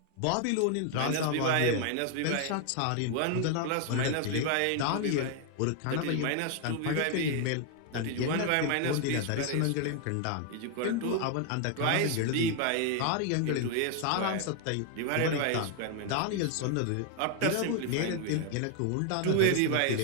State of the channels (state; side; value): different; both; correlation 0.00